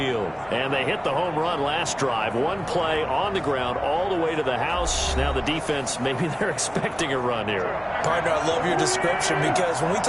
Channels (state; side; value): identical; both; correlation 1.00